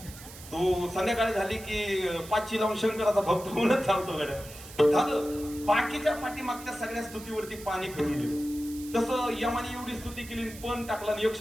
तो संध्याकाळी झाली की 5ची लावून शंकराचा भक्त होऊनच चालतो गड्या. झालं. बाकीच्या पाठीमागच्या सगळ्या स्तुतीवरती पाणी फिरून गेलं. तसं यमाने एवढी स्तुती केली, पण टाकला आणि एक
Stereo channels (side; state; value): right; noise; hiss, 16 dB below the sound